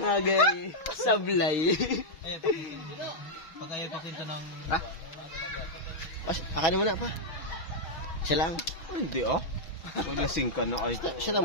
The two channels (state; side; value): late; right; 6.2 ms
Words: Agay. Sablay. Ay, pakwento. Pag ayaw pakwento ng... Ha? Pas, akanin mo na pa. Isa lang. Hindi ah. Maglasing ka na ay. Siya